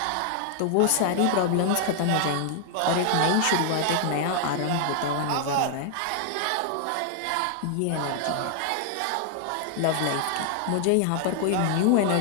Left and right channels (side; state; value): both; different; correlation 0.00